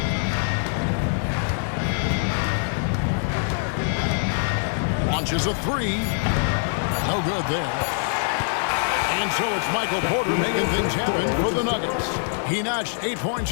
Launches a three. No good there. And so it's Michael Porter making things happen for the Nuggets. He notched 8 points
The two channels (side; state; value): right; silent; 63 dB below the other